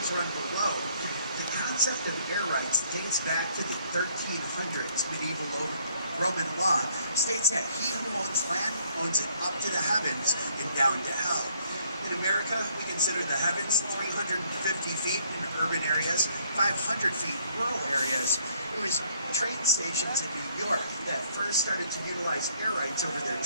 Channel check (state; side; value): inverted; both; correlation -0.65